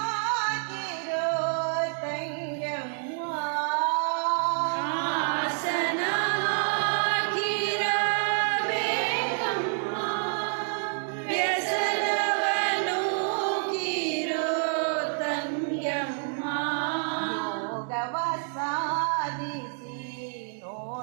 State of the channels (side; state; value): left; silent; 59 dB below the other